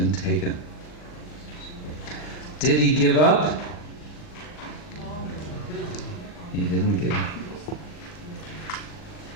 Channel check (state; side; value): late; right; 39 ms